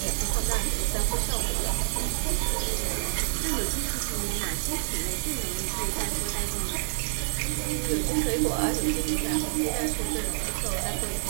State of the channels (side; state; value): left; silent; 59 dB below the other